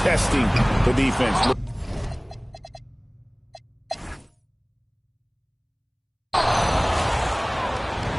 testing the defense.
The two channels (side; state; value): both; identical; correlation 1.00